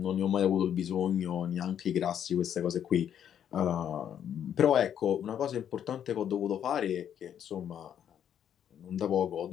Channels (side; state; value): right; quieter; 9.4 dB